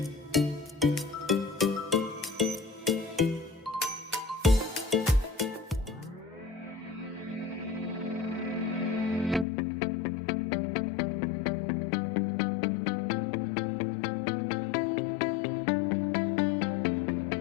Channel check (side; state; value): right; drops out; at 9.5 s